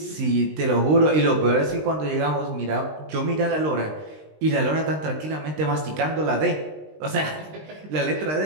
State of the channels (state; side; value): late; left; 20 ms